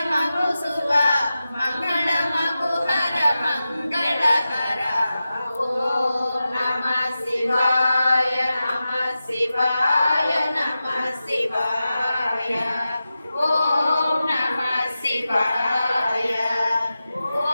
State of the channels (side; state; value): both; inverted; correlation -0.93